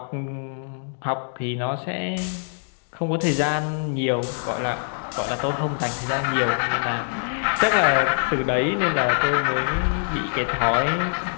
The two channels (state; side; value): silent; right; digital silence